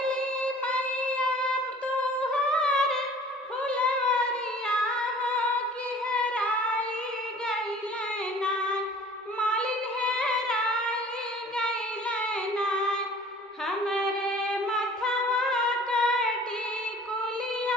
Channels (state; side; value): normal; both; correlation 0.48